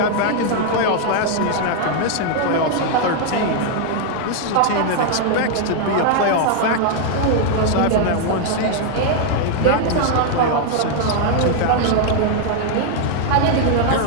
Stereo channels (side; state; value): both; different; correlation 0.00